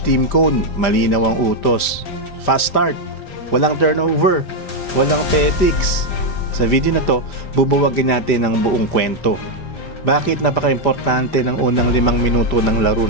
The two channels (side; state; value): right; late; 5.1 ms